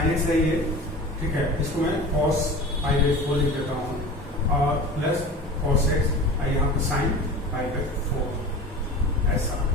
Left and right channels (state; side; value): normal; both; correlation 0.36